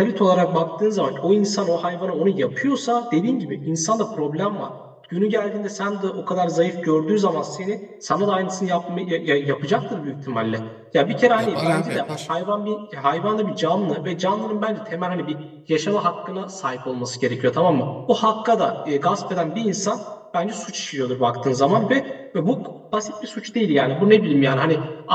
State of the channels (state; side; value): identical; both; correlation 1.00